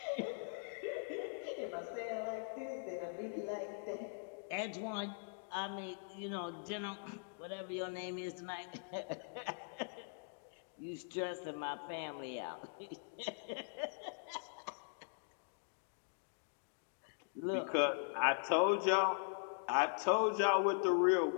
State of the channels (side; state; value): right; silent; digital silence